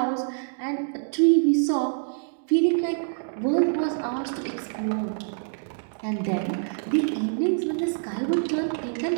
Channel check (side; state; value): left; silent; digital silence